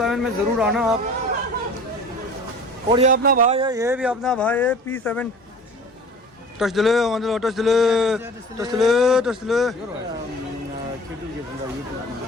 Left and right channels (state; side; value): normal; both; correlation 0.43